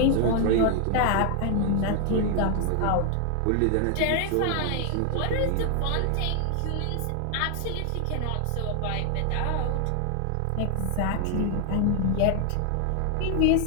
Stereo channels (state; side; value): different; both; correlation 0.00